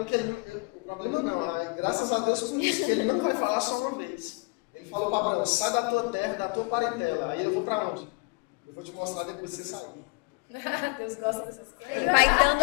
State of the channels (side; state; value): right; quieter; 28.7 dB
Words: problema é que graças a Deus por isso, que ele não vai falar só uma vez. Ele falou para Abraão, sai da tua terra, da tua parentela. Aí eu vou para onde? Eu vou te mostrar depois que você sair. Deus gosta dessas coisas. Vai dando